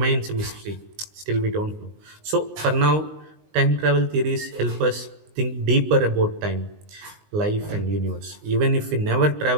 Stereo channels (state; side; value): late; left; 19 ms